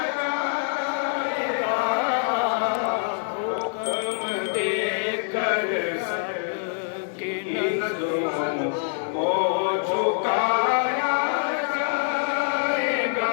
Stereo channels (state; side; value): silent; right; 62 dB below the other